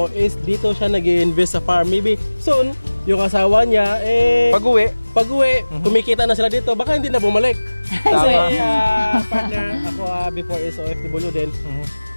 is dito siya nag-i-invest sa farm. Maybe soon, yung asawa niya, pag-uwi, kumikita na sila dito, baka hindi na bumalik. Kasi partner, ako before is OFW din.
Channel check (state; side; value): inverted; both; correlation -1.00